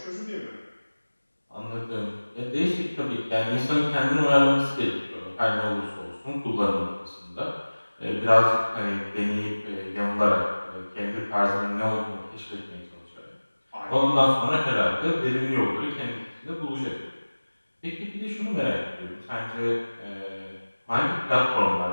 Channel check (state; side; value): inverted; both; correlation -1.00